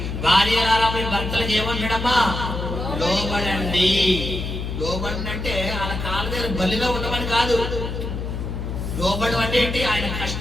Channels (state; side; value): noise; left; hum, 4 dB below the sound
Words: భార్యలారా మీ భర్తలకు ఏమన్నాడమ్మా? లోబడండి. లోబడి అంటే వాళ్ళ కాళ్ళ దగ్గర బలిలో ఉండమని కాదు. లోబడం అంటే ఏంటి? ఆయన